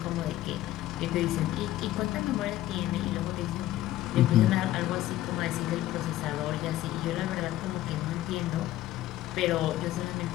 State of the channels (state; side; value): quieter; right; 14.6 dB